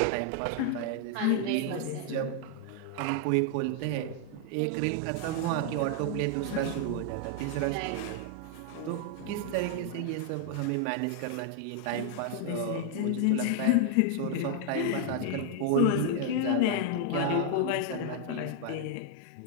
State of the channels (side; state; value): both; different; correlation 0.00